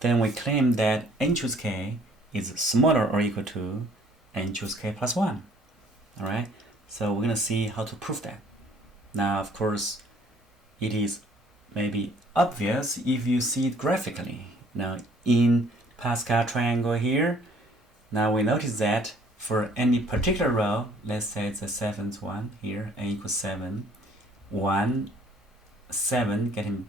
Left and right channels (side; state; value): both; normal; correlation 0.59